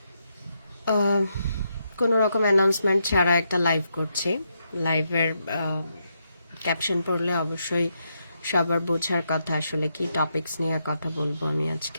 কোনো রকম অ্যানাউন্সমেন্ট ছাড়া একটা লাইভ করছি। লাইভের ক্যাপশন পড়লে অবশ্যই সবার বোঝার কথা আসলে কি টপিকস নিয়ে কথা বলবো আমি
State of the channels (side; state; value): both; inverted; correlation -0.81